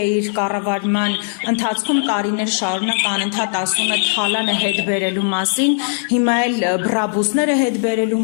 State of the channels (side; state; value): right; silent; digital silence